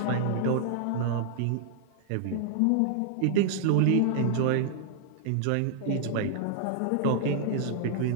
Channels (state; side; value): different; both; correlation 0.00